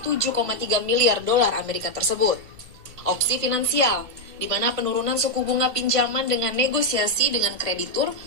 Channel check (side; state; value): left; late; 1.5 ms